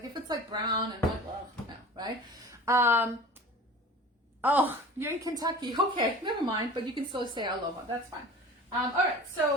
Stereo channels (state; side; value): normal; both; correlation 0.40